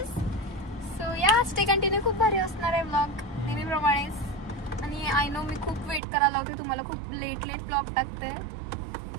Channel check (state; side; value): drops out; left; at 6.0 s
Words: सो या स्टे कंटिन्यू. खूप भारी असणार आहे ब्लॉग नेहमीप्रमाणेच. आणि आय नो मी खूप वेट करायला होते तुम्हाला. खूप लेट ब्लॉग टाकते.